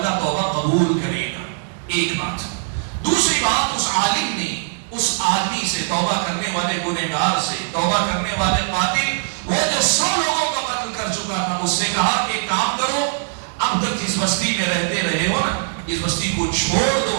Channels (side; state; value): left; silent; digital silence